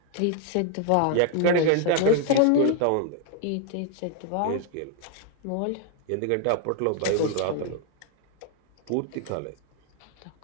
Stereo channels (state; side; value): different; both; correlation 0.00